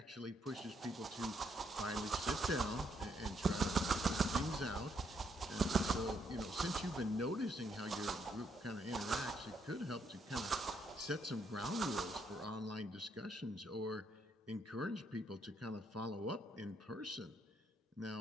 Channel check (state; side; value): normal; both; correlation 0.74